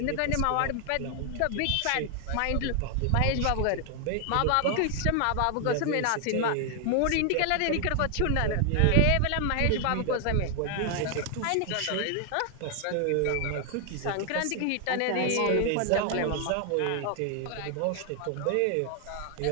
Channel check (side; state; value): both; different; correlation 0.00